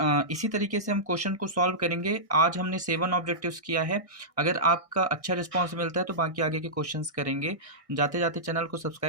इसी तरीके से हम क्वेश्चन को सॉल्व करेंगे। आज हमने 7 ऑब्जेक्टिव्स किया है। अगर आपका अच्छा रिस्पांस मिलता है तो बाकी आगे के क्वेश्चंस करेंगे। जाते जाते चैनल को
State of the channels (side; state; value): left; late; 1.6 ms